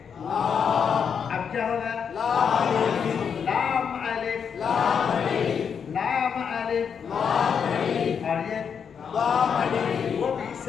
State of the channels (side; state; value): right; quieter; 7.0 dB